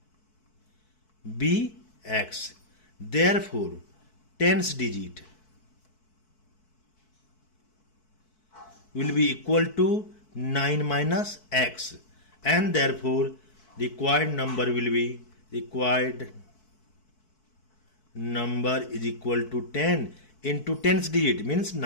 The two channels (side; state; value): right; late; 4.6 ms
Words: be x. Therefore, 10's digit will be equal to 9 minus x, and therefore required number will be required number is equal to 10 into 10's digit means